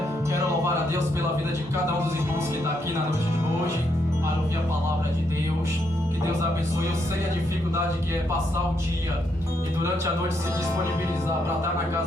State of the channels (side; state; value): both; normal; correlation 0.77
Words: Quero louvar a Deus pela vida de cada um dos irmãos que está aqui na noite de hoje para ouvir a palavra de Deus. Que Deus abençoe. Eu sei a dificuldade que é passar o dia e durante a noite se disponibilizar para estar na